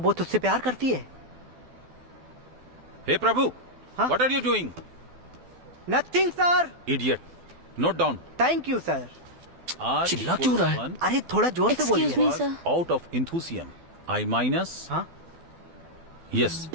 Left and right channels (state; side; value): late; left; 12 ms